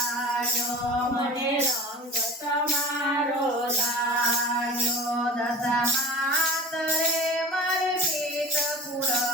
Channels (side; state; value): both; normal; correlation 0.38